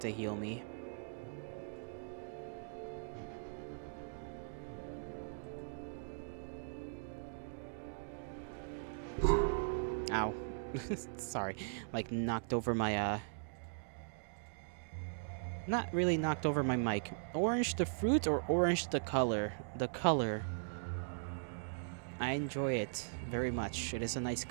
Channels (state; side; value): silent; left; digital silence